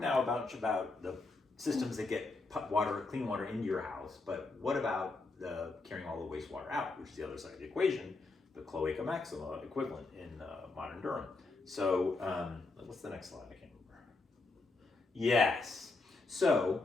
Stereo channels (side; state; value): right; quieter; 3.6 dB